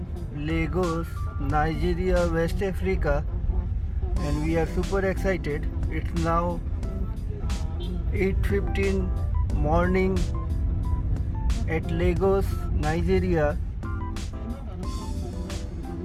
Lagos, Nigeria, West Africa, and we are super excited. It's now 8:15 morning at Lagos, Nigeria.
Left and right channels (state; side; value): identical; both; correlation 1.00